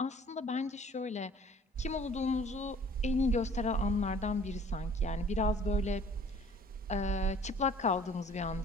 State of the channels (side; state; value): both; normal; correlation 0.53